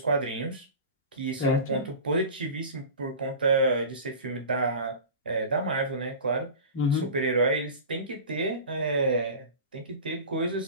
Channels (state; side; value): inverted; both; correlation -0.34